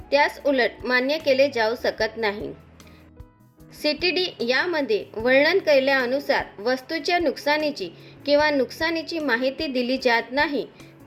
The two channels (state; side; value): identical; both; correlation 1.00